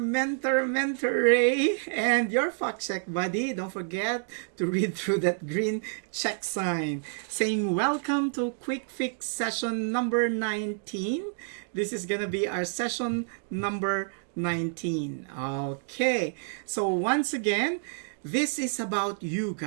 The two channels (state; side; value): silent; left; digital silence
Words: Ray, and your fact check buddy. Don't forget to read through that green check sign saying welcome to QuickFix session number 19. This is going to be our session number 19. Okay, so once again, this is about you